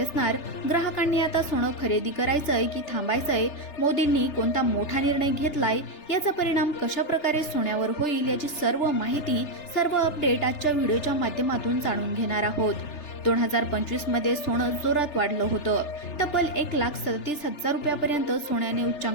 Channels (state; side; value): late; right; 3.3 ms